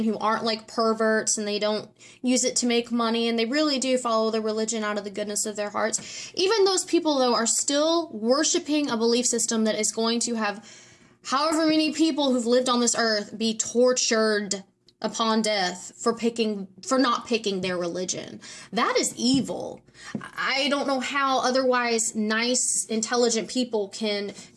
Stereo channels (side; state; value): both; identical; correlation 1.00